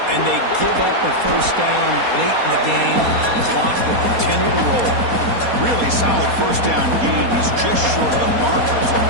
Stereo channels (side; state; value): left; late; 4.2 ms